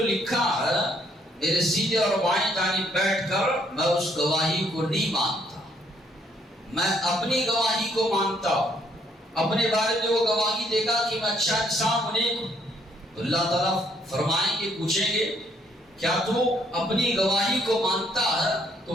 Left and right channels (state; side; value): normal; both; correlation 0.68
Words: لکھا ہے، میرے سیدھے اور بائیں جانب بیٹھ کر میں اس گواہی کو نہیں مانتا، میں اپنی گواہی کو مانتا ہوں۔ اپنے بارے میں وہ گواہی دے گا کہ میں اچھا انسان ہوں، نیک ہوں۔ تو اللہ تعالیٰ فرمائیں گے، پوچھیں گے کیا تو اپنی گواہی کو مانتا ہے؟